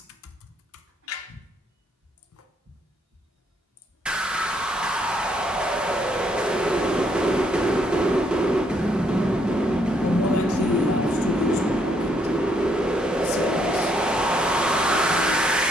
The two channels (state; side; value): normal; both; correlation 0.71